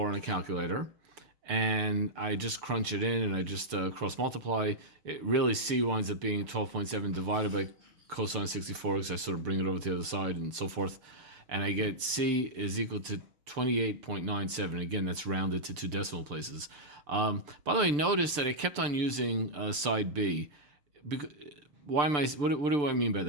on a calculator, and I just crunch it in and I just cross multiply. It really C winds up being 12.7 divided by cosine 64 because I sort of bring it over to the other side and so forth, and I get C is equal to 28.97. Again, that's rounded to 2 decimal places. By the way, notice that I kept on using side B. Why am I? What do I mean by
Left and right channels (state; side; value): late; left; 6.8 ms